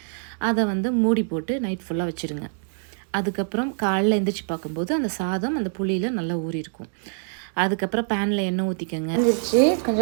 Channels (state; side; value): silent; left; digital silence